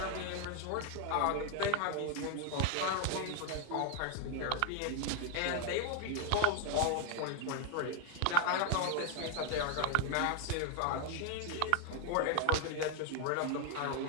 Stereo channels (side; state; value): both; different; correlation 0.01